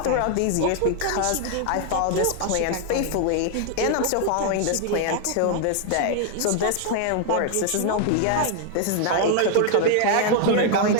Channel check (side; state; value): both; different; correlation 0.00